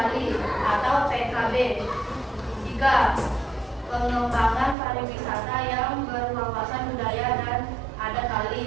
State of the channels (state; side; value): drops out; left; at 4.8 s